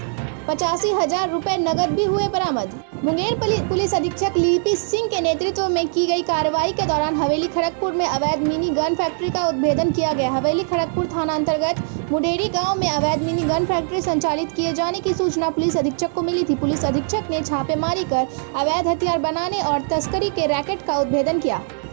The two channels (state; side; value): silent; left; 65 dB below the other